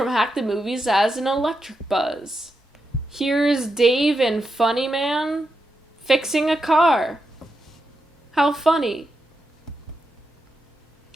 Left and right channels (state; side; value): normal; both; correlation 0.86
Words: Hack the Movies as an electric buzz. Here's Dave and Funny Man fixing a car. How funny.